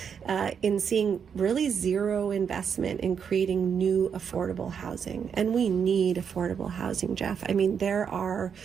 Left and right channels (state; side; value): quieter; left; 7.1 dB